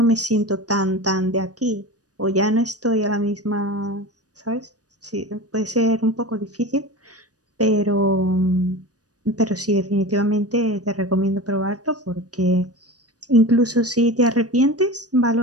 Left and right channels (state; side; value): late; left; 0.68 ms